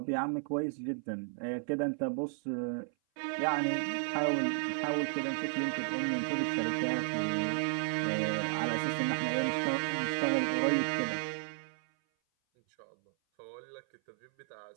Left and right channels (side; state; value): left; silent; 55 dB below the other